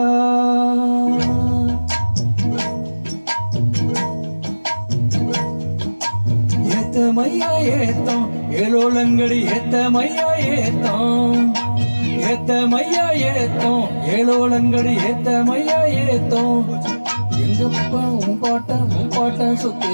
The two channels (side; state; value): both; inverted; correlation -1.00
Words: ஏத்தமையா ஏத்தம் ஏழோலங்கடி, ஏத்தமையா ஏத்தம் ஏத்தமையா ஏத்தம் ஏழோலங்கடி, ஏத்தமையா ஏத்தம். எங்கப்பா உன் பாட்ட சொத்து